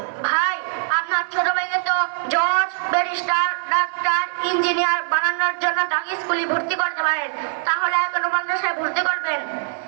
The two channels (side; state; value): left; silent; 64 dB below the other